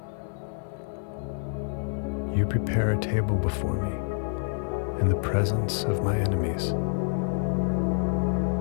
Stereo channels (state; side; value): silent; right; 60 dB below the other